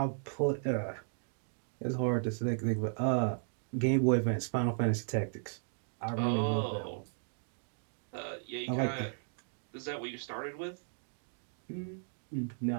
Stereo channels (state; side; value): silent; left; digital silence